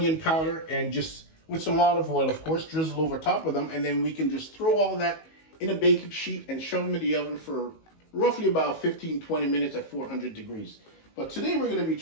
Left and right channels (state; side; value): late; right; 19 ms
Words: powder, and just with some olive oil, of course, drizzle over top of them. And then we can just throw all that in a baking sheet and shove them in the oven for roughly about 15-20 minutes at 400 degrees. But today we're going to be